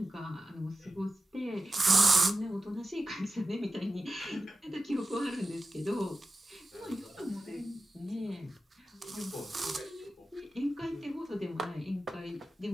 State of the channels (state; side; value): normal; both; correlation 0.93